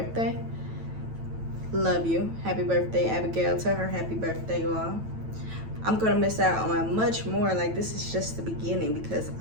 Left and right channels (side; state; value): left; late; 9.0 ms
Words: Love you. Happy birthday, Abigail. Tell her happy birthday, y'all. I'm gonna miss out on much more. Like, this is just the beginning, because